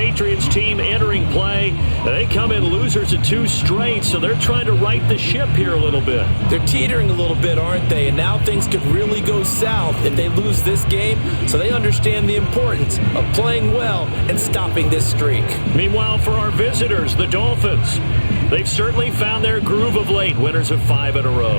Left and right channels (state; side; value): inverted; both; correlation -1.00